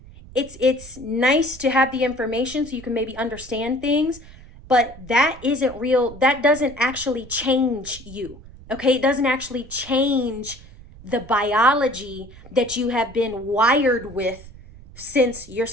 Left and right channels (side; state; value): right; noise; rumble, 19 dB below the sound